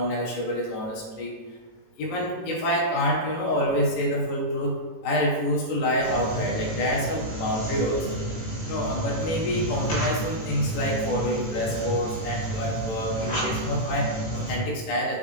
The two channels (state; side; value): late; right; 18 ms